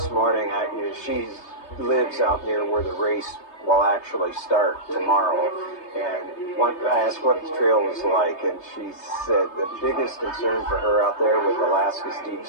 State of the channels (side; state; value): right; late; 3.3 ms